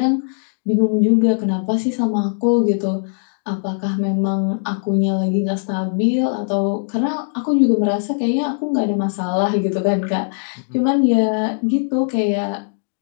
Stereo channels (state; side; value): silent; right; digital silence